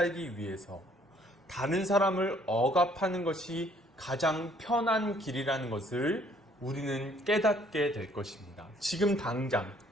위해서 다른 사람을 억압하는 것이 가장 편한 길이라는 것을 우리는 깨닫게 될 것입니다. 지금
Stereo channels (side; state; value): both; normal; correlation 0.62